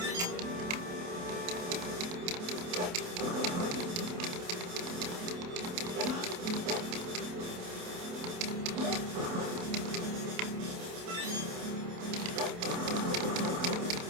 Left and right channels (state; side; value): late; left; 28 ms